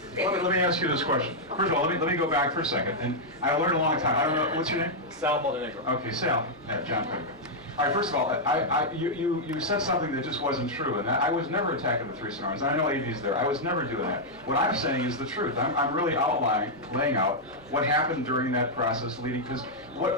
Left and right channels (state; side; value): normal; both; correlation -0.05